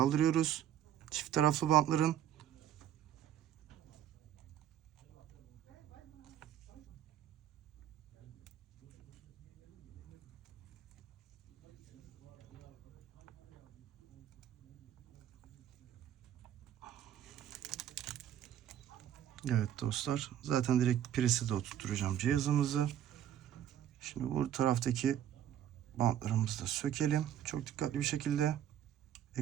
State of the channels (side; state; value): left; quieter; 10.8 dB